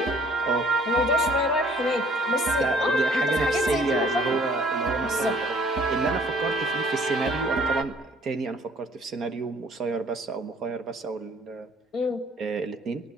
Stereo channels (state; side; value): normal; both; correlation 0.57